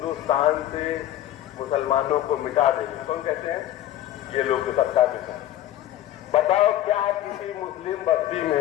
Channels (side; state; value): right; quieter; 13.0 dB